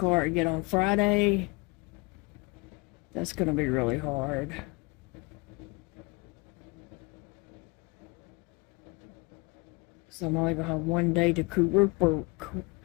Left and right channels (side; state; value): right; quieter; 27.2 dB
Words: again on Friday, that's going to be really hard. So I'm only going to have one day to